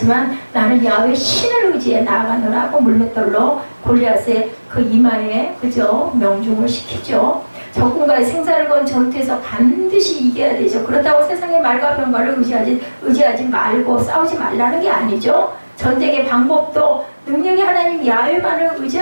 나는 야훼 신을 의지해 나아가노라고 물맷돌로 골리앗의 그 이마에 그죠? 명중을 시키죠. 적군과의 생사를 건 전투에서 반드시 이겨야 되죠. 그렇다고 세상의 말과 병거를 의지하지 말고 싸우지 말라는 게 아니죠. 전쟁의 방법도 능력이 하나님 야훼만을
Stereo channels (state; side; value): inverted; both; correlation -1.00